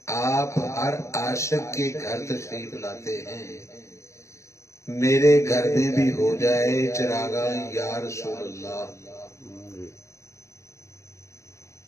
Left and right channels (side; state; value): right; late; 0.14 ms